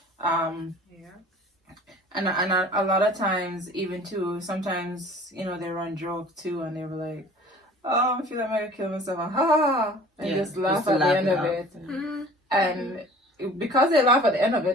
Yeah. And a lot of times, even too, sometimes, you know, they run joke too, and they were like, oh, I feel like I'm gonna kill myself, and ha ha ha, and Yeah, just laugh just to at the laugh end it of off. it. Mm-hmm. And because they laugh at the end of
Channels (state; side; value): normal; both; correlation 0.47